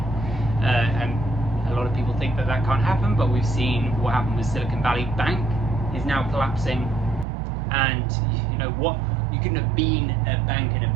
And A lot of people think that that can't happen, but we've seen what happened with Silicon Valley Bank is now collapsing. And you know what, you couldn't have been a bank in a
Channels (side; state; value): left; drops out; at 7.2 s